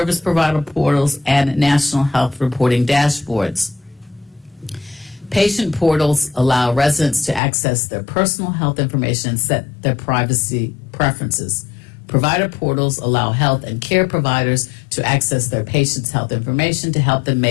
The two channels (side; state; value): right; drops out; at 7.4 s